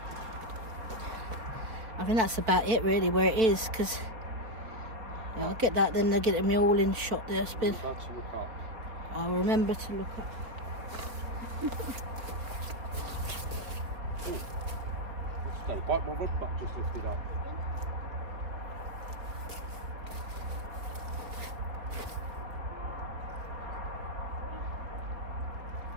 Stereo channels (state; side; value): late; left; 4.5 ms